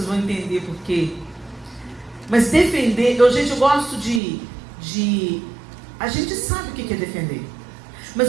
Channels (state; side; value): drops out; left; at 4.2 s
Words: vão entender por quê. Mas defender, gente, eu gosto de a gente sabe o que é defender.